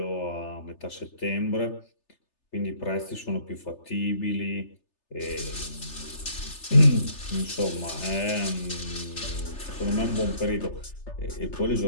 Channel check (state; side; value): late; right; 3.3 ms